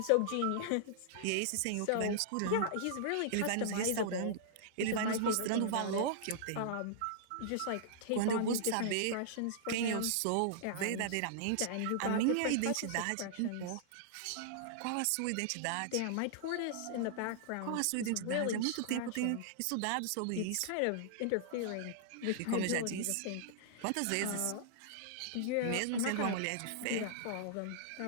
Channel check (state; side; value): different; both; correlation -0.01